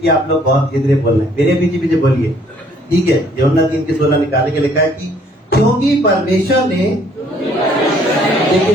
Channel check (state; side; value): normal; both; correlation 0.62